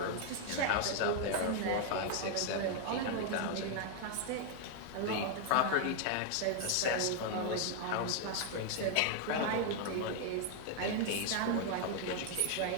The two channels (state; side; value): different; both; correlation 0.00